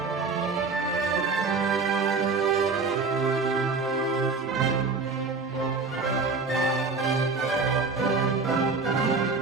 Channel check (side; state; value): left; quieter; 4.3 dB